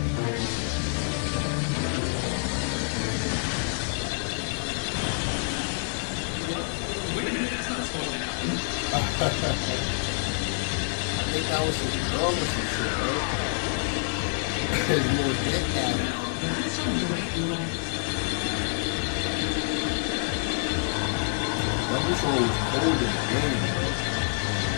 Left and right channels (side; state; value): right; silent; 60 dB below the other